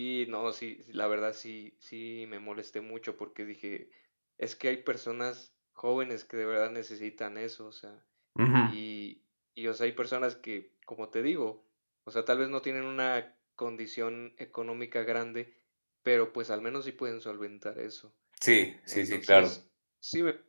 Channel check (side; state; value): both; inverted; correlation -1.00